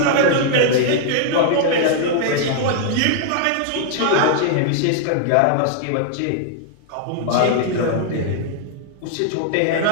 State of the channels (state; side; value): different; both; correlation 0.00